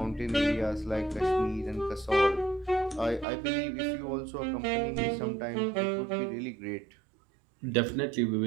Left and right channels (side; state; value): left; drops out; at 3.2 s